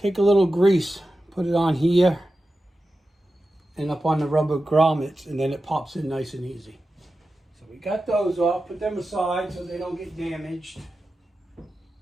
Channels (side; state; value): both; normal; correlation 0.93